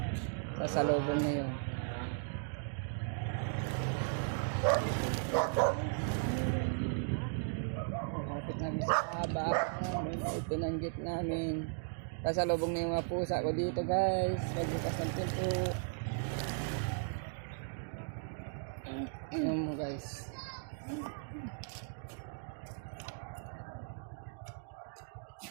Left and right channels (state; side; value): silent; left; digital silence